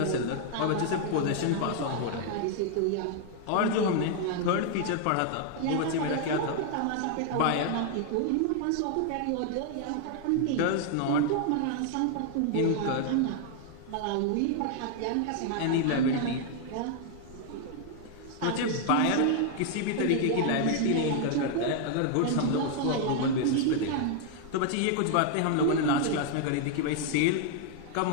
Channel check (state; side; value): different; both; correlation 0.00